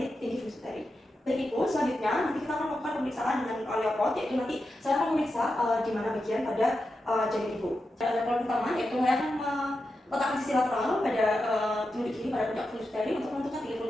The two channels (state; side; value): normal; both; correlation 0.89